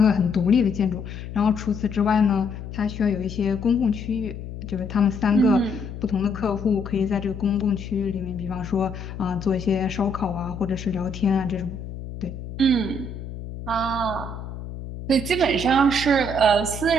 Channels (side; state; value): left; noise; hum, 10 dB below the sound